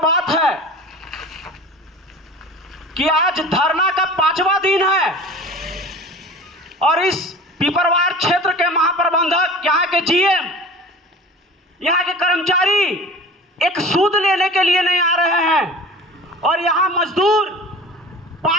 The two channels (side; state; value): both; normal; correlation 0.39